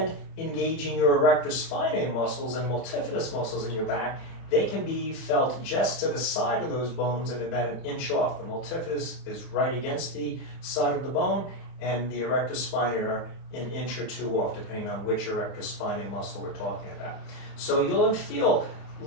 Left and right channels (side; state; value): right; late; 31 ms